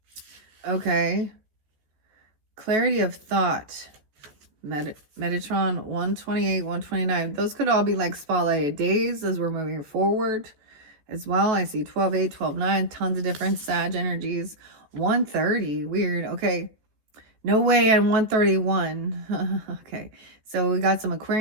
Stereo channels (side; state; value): left; late; 14 ms